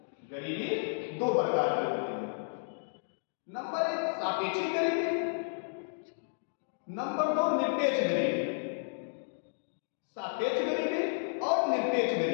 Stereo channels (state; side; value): silent; right; digital silence